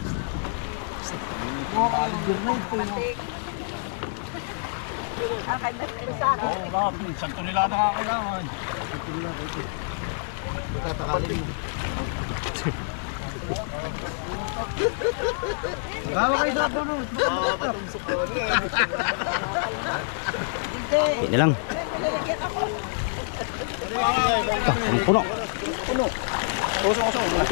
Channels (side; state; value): right; silent; digital silence